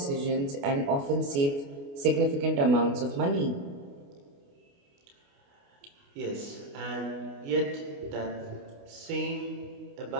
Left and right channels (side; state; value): left; late; 28 ms